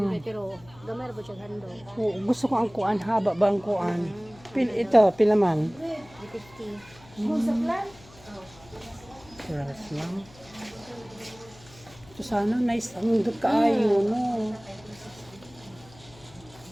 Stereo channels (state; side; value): noise; left; hum, 23 dB below the sound